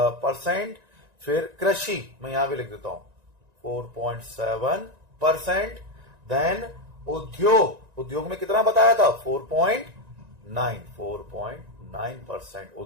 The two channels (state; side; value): late; left; 1.9 ms